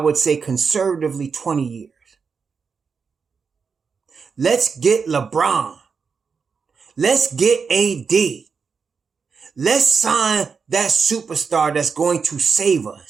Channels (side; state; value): left; quieter; 5.5 dB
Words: say, conservatively 20 years. Let's get LeBron. Let's get AD. Let's sign that superstar that's going to save